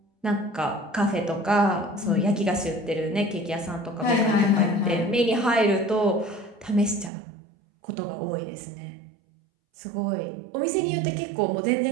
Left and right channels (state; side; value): drops out; left; at 7.1 s